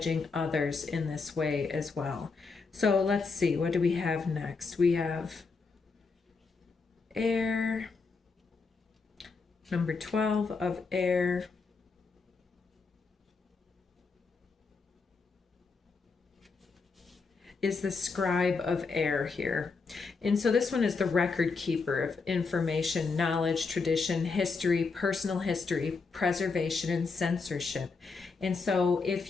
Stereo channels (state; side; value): quieter; right; 4.5 dB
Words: others in this way as well. So let's see, what do we have next? We have air, number 12 of air. Is the scribe of air here. And so this one is the record keeper of information, knowledge, tradition, history, personal history, preservation, and censorship. And so